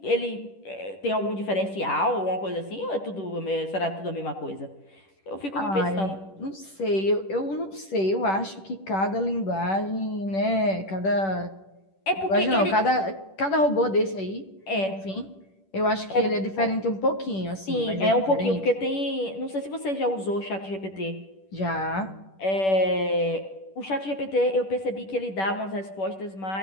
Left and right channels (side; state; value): right; late; 10 ms